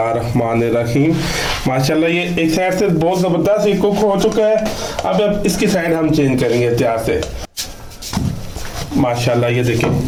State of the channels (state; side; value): identical; both; correlation 1.00